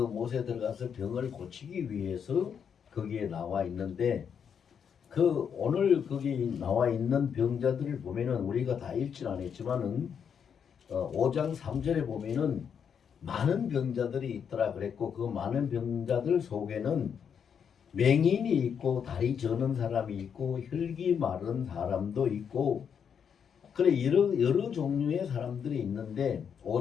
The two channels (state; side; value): quieter; right; 7.4 dB